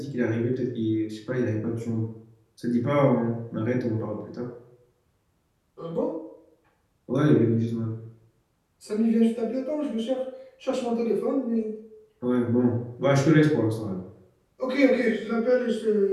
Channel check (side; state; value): both; identical; correlation 1.00